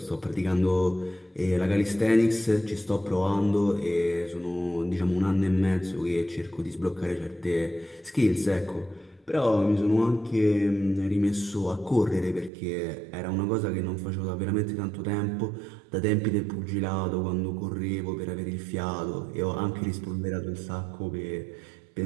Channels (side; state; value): left; drops out; at 12.5 s